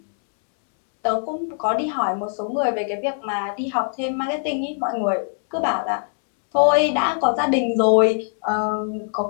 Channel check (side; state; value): right; silent; 64 dB below the other